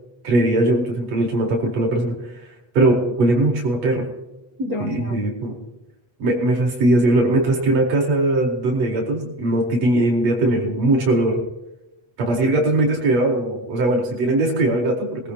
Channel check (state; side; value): late; left; 8.3 ms